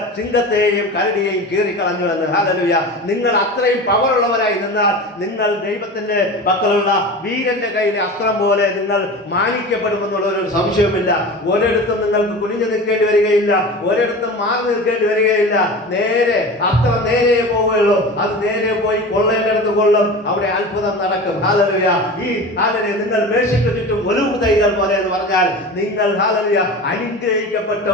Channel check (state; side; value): normal; both; correlation 0.32